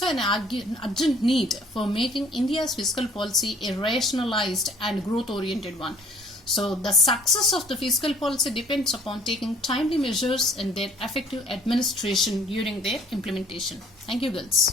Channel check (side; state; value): both; normal; correlation 0.56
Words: an urgent need for making India's fiscal policy a rationalized and growth-oriented one. So the success of the fiscal policy depends upon taking timely measures and their effective administration during their implementation. Thank you,